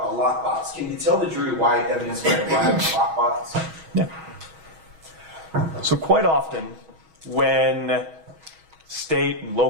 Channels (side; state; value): left; late; 6.3 ms